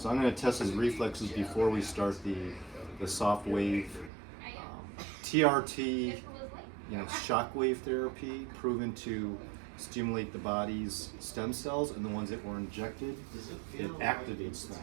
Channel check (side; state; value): left; drops out; at 4.1 s